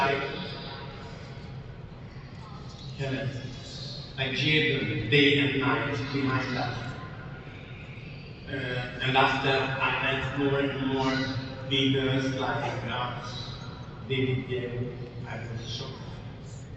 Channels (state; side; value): identical; both; correlation 1.00